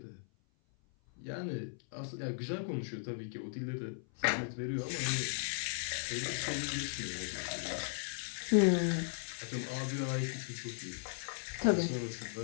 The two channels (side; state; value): right; silent; 53 dB below the other